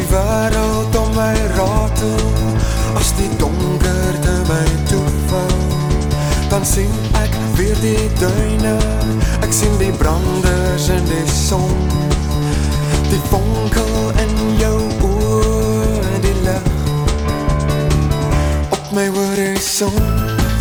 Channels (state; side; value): identical; both; correlation 1.00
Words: wêreld om my ratel, as die donkerte my toevou, dan sien ek weer die duine, ek sien die branders in die son, die vonkel in jou oor, die lig op my horizon,